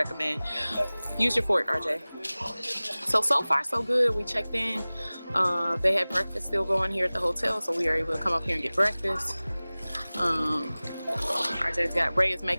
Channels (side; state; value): both; inverted; correlation -0.99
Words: Use your Fort, RJ. So far so good. We checked in. They had breakfast still going here at the hotel, so we are able to come up here and get breakfast. Ray is